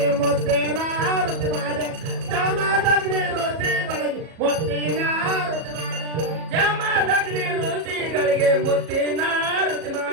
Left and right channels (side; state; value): left; late; 37 ms